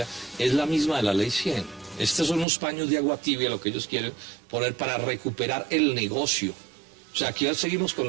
es la misma de la ley 100. Estos son unos paños de agua tibia lo que ellos quieren poner para recuperar el negocio. O sea, aquí seguimos con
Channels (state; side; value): drops out; left; at 2.5 s